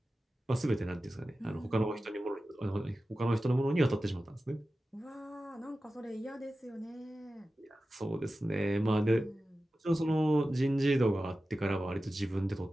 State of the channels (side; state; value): both; normal; correlation 0.94